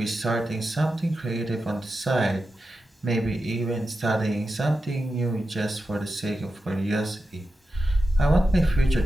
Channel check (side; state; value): both; normal; correlation 0.90